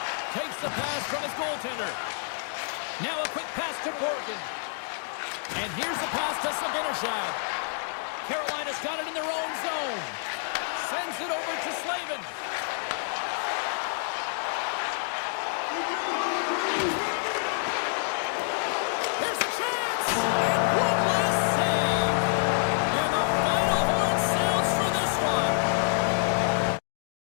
Takes the pass from his goaltender. Now a quick pass to Borgen. And here's the pass to Zibanejad. Carolina's got it in their own zone. Sends it over to Slavin.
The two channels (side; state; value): right; silent; digital silence